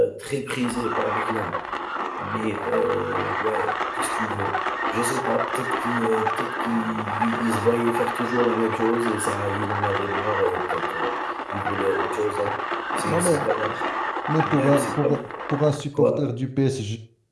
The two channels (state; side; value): identical; both; correlation 1.00